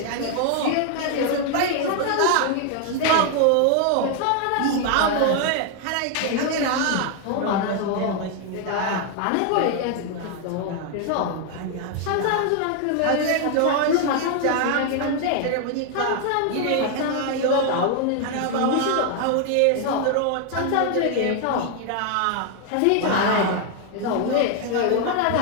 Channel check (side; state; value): both; different; correlation 0.01